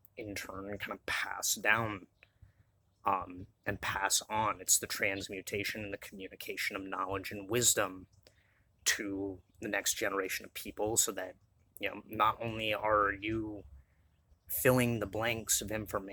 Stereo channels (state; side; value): identical; both; correlation 1.00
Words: in turn kind of pass down, and pass on. It's the transmutation and the communication of knowledge and wisdom to the next generation of people, so that, you know, not only are you filling the blanks of